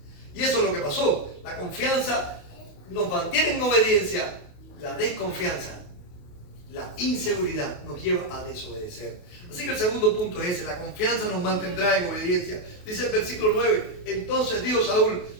Y eso es lo que pasó. La confianza nos mantiene en obediencia. La desconfianza, la inseguridad nos lleva a desobedecer. Así que el segundo punto es ese. La confianza nos mantendrá en obediencia. Dice el versículo 9. Entonces dijo Saúl:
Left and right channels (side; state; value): right; late; 28 ms